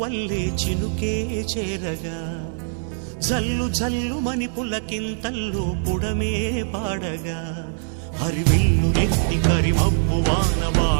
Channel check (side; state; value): left; silent; digital silence